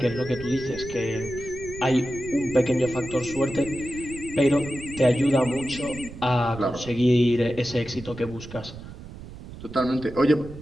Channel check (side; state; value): right; noise; rumble, 14 dB below the sound